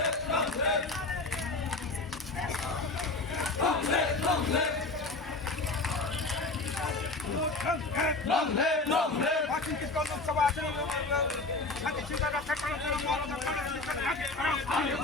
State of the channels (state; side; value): quieter; right; 3.2 dB